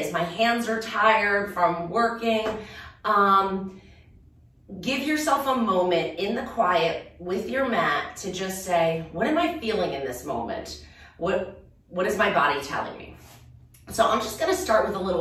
My hands are tired from working. Give yourself a moment in the quiet with your mat to just say, what am I feeling in this moment? What is my body telling me? So I'm just gonna start with a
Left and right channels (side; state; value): both; identical; correlation 1.00